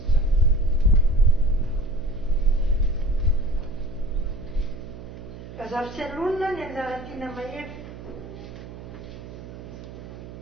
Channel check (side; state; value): right; noise; hum, 14 dB below the sound